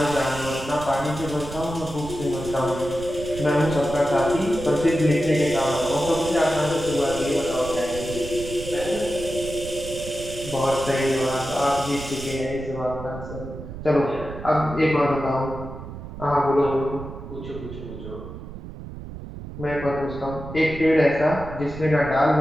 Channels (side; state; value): right; noise; rumble, 11 dB below the sound